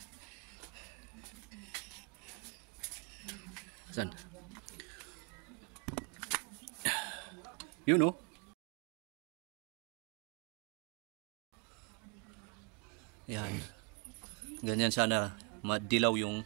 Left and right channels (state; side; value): quieter; left; 30.3 dB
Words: Saan? Yun oh. Yan. Ganyan sana madilaw yung